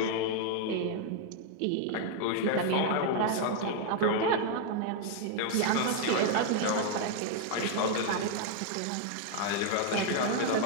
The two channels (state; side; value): different; both; correlation 0.00